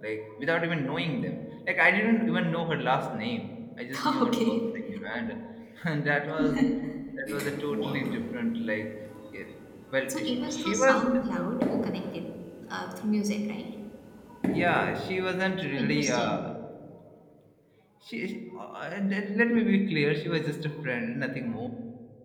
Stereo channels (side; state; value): both; identical; correlation 1.00